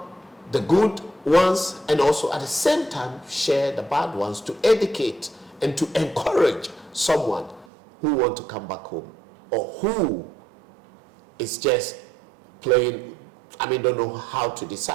the good ones, and also at the same time share the bad ones to educate and to encourage someone who wants to come back home, or who is just playing, don't know how to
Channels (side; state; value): left; drops out; at 7.7 s